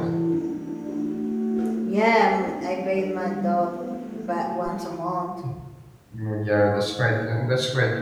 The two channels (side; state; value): both; identical; correlation 1.00